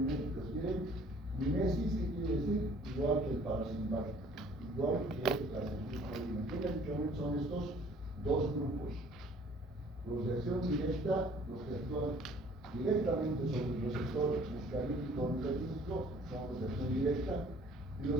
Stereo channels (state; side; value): normal; both; correlation 0.55